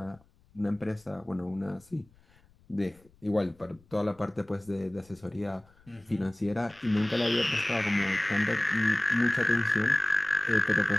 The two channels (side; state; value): left; noise; rumble, 30 dB below the sound